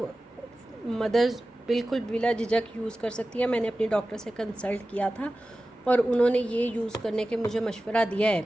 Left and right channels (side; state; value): both; normal; correlation 0.95